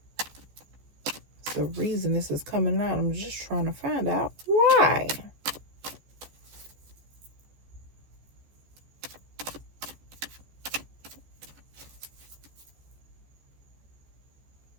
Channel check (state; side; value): late; left; 14 ms